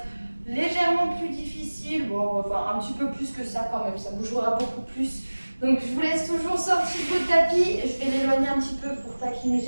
légèrement plus difficile. Bon, enfin un petit peu plus que ça quand même, ça bougera beaucoup plus. Donc je vous laisse toujours sortir votre tapis. Je vais l'éloigner un petit peu pour pas qu'il me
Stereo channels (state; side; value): inverted; both; correlation -1.00